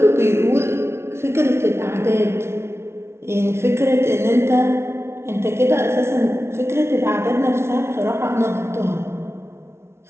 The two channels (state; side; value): late; left; 0.12 ms